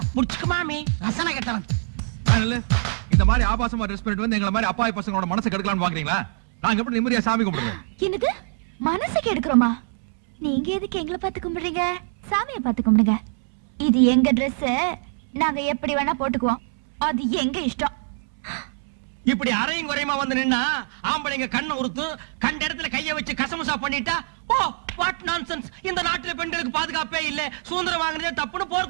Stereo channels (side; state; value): left; silent; 63 dB below the other